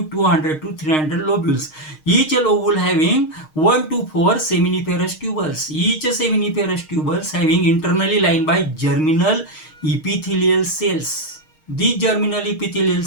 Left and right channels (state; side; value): late; right; 6.5 ms